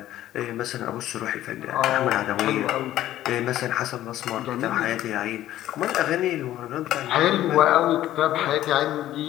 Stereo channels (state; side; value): quieter; right; 13.5 dB